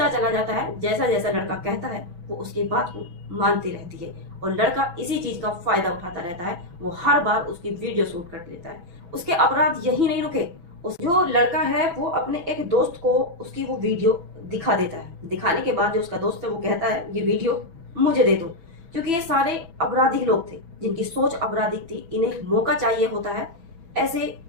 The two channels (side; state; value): left; late; 6.0 ms